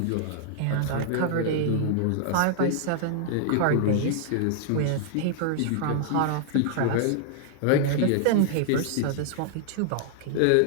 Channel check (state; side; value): different; both; correlation -0.01